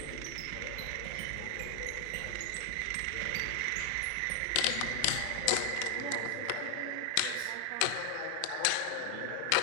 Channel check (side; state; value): both; different; correlation 0.00